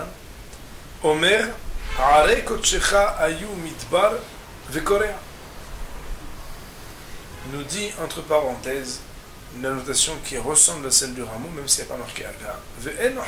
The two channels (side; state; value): both; identical; correlation 1.00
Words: Omer Are Kotshecha Ayu Midbar Vekorea. Nous dit entre parenthèses une notation qui ressemble à celle du rameau, même si elle n'est pas marquée à gare. Ve'en